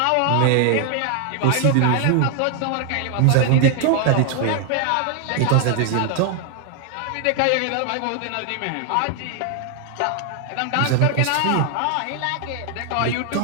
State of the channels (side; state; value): both; different; correlation 0.00